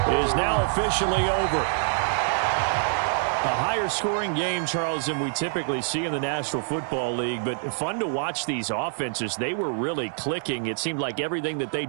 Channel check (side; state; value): left; silent; digital silence